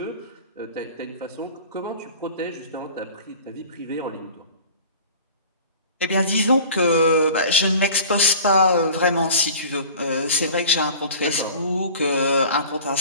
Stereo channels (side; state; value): both; inverted; correlation -0.42